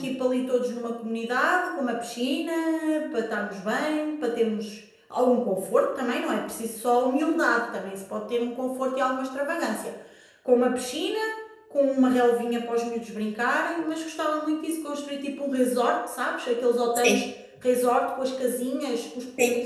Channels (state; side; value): identical; both; correlation 1.00